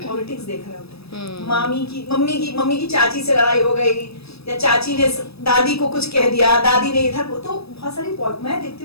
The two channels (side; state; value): right; late; 0.78 ms